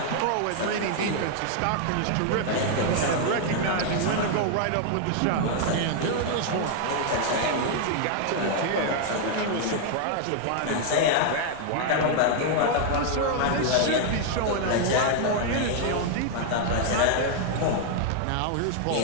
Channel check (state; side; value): different; both; correlation 0.00